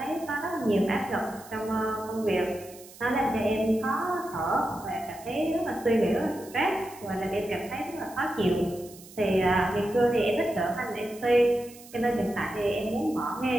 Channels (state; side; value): noise; right; hiss, 20 dB below the sound